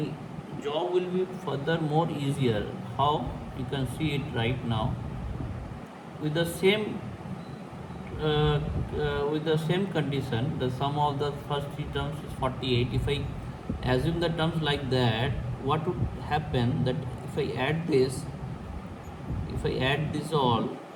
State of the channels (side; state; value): both; identical; correlation 1.00